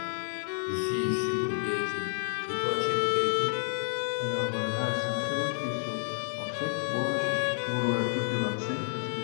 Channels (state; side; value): silent; right; digital silence